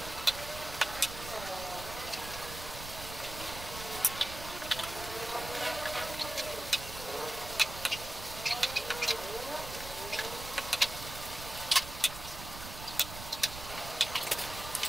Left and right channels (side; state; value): right; noise; rumble, 10 dB below the sound